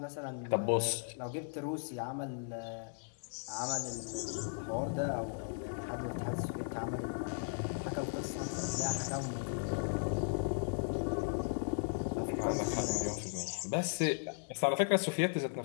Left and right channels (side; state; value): right; silent; digital silence